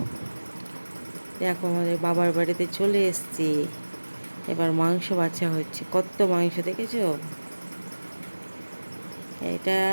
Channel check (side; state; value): both; inverted; correlation -1.00